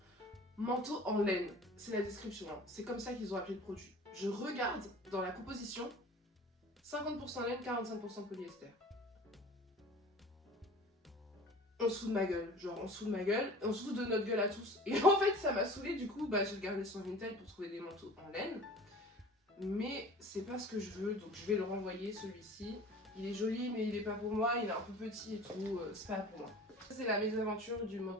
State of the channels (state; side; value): normal; both; correlation 0.43